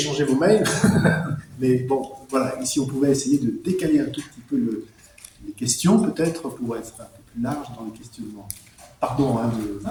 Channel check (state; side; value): identical; both; correlation 1.00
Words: vos mails. Mais bon, voilà, ici on pouvait essayer de décaler un tout petit peu les questions, peut-être, pour être un peu plus large dans les questionnements. Pardon, hein,